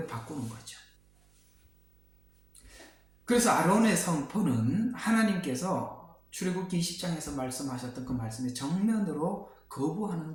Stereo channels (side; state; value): right; noise; hum, 30 dB below the sound